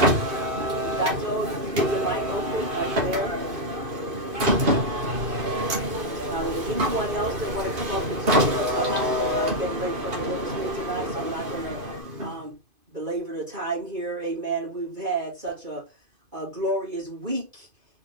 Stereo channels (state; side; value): late; left; 2.5 ms